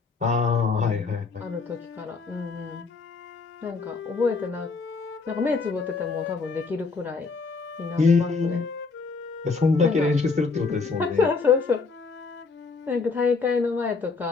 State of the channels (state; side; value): quieter; right; 4.4 dB